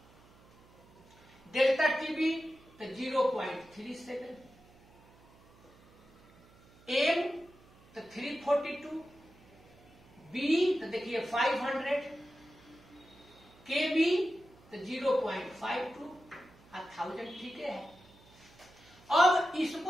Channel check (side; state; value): right; noise; hum, 27 dB below the sound